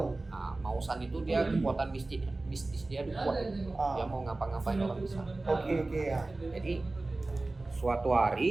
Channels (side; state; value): left; quieter; 3.1 dB